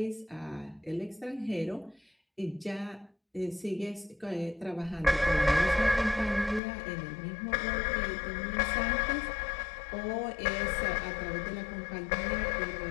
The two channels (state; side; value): drops out; right; at 6.6 s